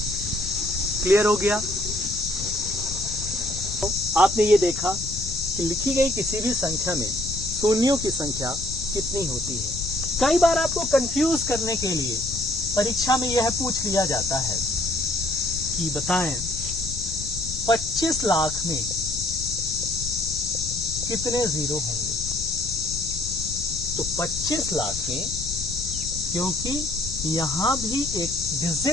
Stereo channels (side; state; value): left; noise; rumble, 10 dB below the sound